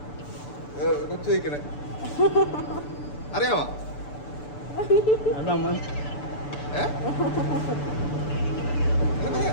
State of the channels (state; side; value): late; right; 6.9 ms